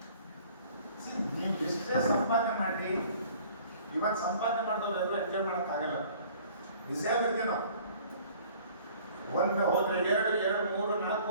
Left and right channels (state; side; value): inverted; both; correlation -0.52